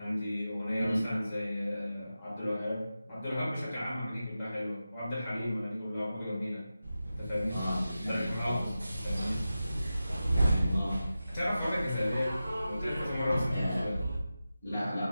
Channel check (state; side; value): inverted; both; correlation -0.93